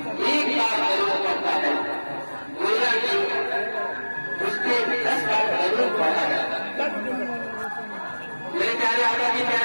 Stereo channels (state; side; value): inverted; both; correlation -1.00